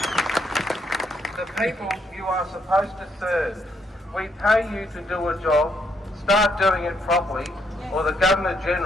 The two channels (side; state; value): both; normal; correlation 0.74